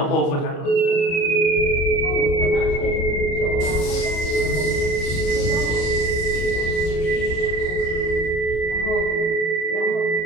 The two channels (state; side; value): late; right; 30 ms